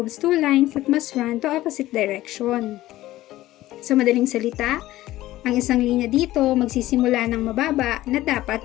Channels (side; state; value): right; quieter; 15.7 dB